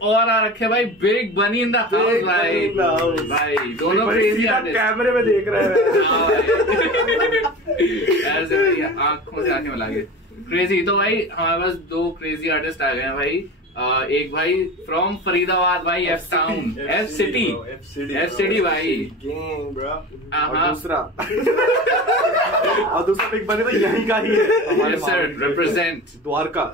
और आ रखे हैं भाई बिग बनी इन द हाउस भाई। भाई दोनों क्रेजी आर्टिस्ट कैमरे में देख रहे हैं। ऐसे भाई आंखों से आंखें मिला के क्रेजी। तो भाई हमारे पास दो क्रेजी आर्टिस्ट आ गए हैं भाई। एक भाई फ्रॉम फरीदाबाद भाई, एफ टाउन, एफ सिटी भाई। और दूसरा बिग बनी तो यहीं का ही है, रिप्रेजेंट द्वारका।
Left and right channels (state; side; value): normal; both; correlation 0.33